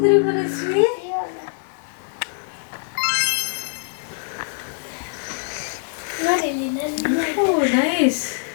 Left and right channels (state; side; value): silent; right; digital silence